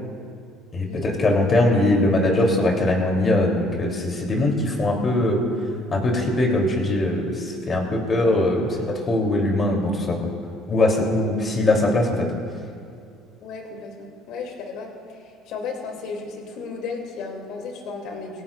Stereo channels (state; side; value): normal; both; correlation 0.65